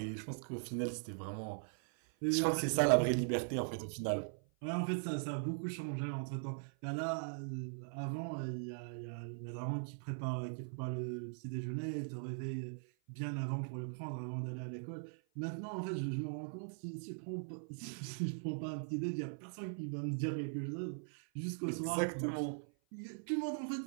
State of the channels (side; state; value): left; silent; 51 dB below the other